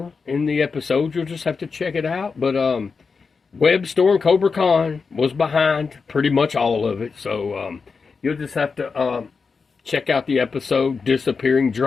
in the episode. You'll just have to check it out. But Web Store and Cobra Khan was behind pretty much all of it. So you'll just have to check out the episode Disappearing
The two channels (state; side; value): quieter; right; 5.0 dB